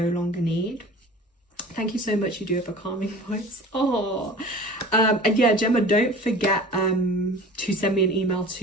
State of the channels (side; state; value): both; normal; correlation 0.41